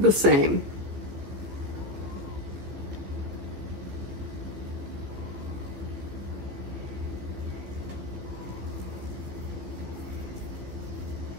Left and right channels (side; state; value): left; late; 15 ms